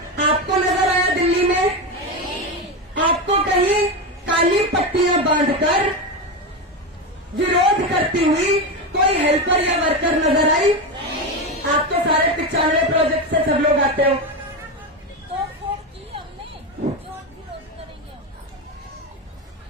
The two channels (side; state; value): both; normal; correlation 0.15